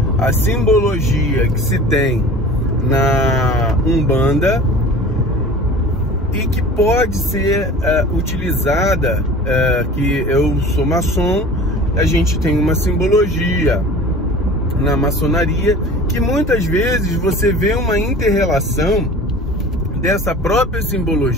A simbologia que se tem na Umbanda e que pode ser utilizada, que eu sou maçom, a gente tem uma simbologia na maçonaria, que muitas vezes você vê uma inter-relação dessa própria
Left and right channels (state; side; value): normal; both; correlation 0.41